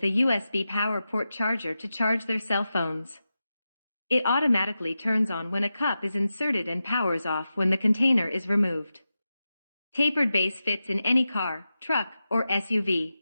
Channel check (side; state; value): both; inverted; correlation -0.91